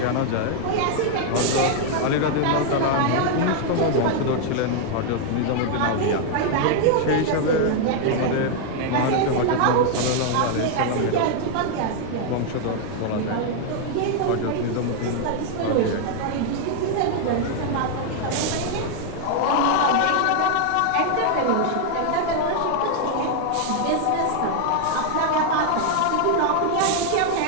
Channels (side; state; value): both; different; correlation 0.00